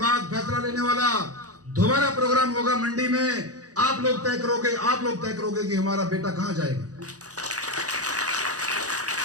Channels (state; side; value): late; left; 0.67 ms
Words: फैसला लेने वाला। दोबारा प्रोग्राम होगा मंडी में, आप लोग तय करोगे कि हमारा बेटा कहां जाएगा।